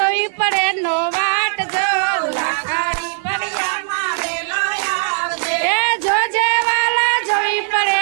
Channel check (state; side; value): silent; left; 62 dB below the other